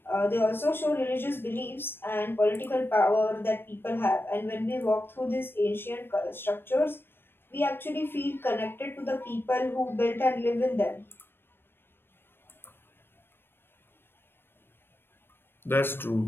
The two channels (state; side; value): late; right; 0.10 ms